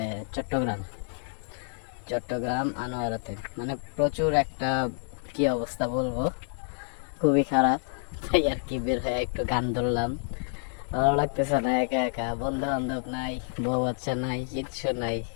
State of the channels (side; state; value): right; silent; digital silence